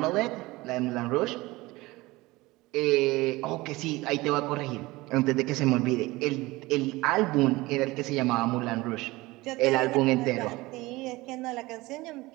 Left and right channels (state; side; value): quieter; left; 20.6 dB